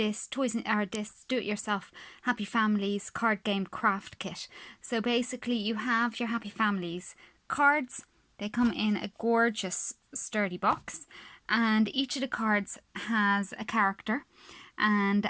this do-it-yourself Happy Families card game craft kit. So basically you have your Happy Families cards. They come in a gorgeous sturdy box, and each of the cards has a character, and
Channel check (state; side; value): identical; both; correlation 1.00